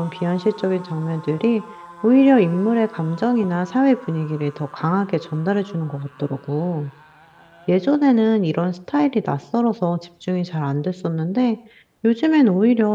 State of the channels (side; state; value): both; identical; correlation 1.00